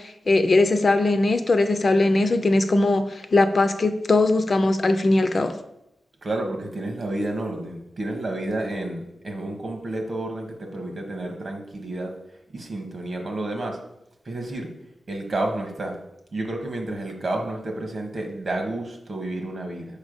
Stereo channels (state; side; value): normal; both; correlation 0.92